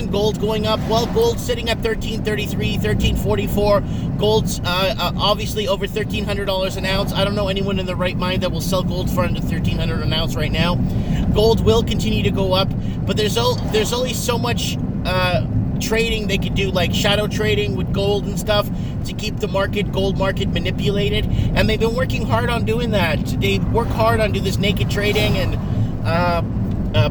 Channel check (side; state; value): both; identical; correlation 1.00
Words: gold going up? Well, gold's sitting at $1333, $1344. Gold's obviously over $1,300 an ounce. I don't know anyone in their right mind that will sell gold for under $1,300 an ounce right now. Gold will continue to go up, but there's only so much trading they could do, like shadow trading with gold and stuff, to keep the gold market manipulated. And they've been working hard on doing that. They work hard on do this naked trading and